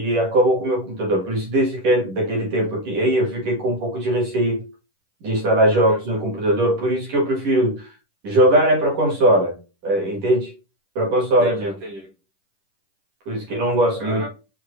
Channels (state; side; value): late; left; 10 ms